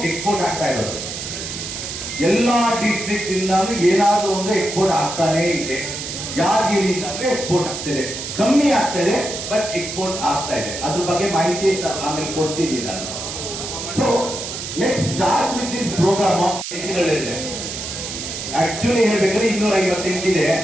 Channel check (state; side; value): noise; right; hiss, 7 dB below the sound